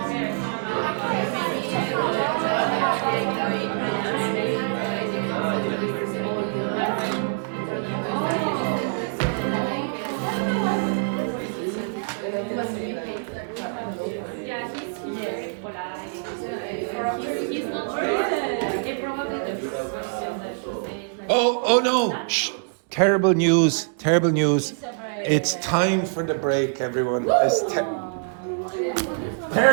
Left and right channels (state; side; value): silent; left; digital silence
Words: Oh no! Shh. Terrible news! Terrible news! It's time for the break, everyone. It's